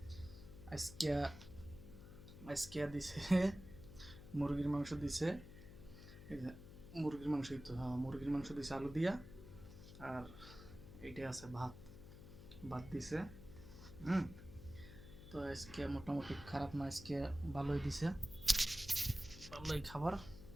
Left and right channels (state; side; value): noise; left; hum, 14 dB below the sound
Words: আজকে আজকে দিছে মুরগির মাংস দিছে। এই যে মুরগির মাংসই তো, হ্যাঁ মুরগির মাংস দিছে আলু দিয়া। আর এইটা আছে ভাত, ভাত দিছে। হুম। তো আজকে মোটামুটি খারাপ না, আজকে ভালোই দিছে, ভালোই খাবার।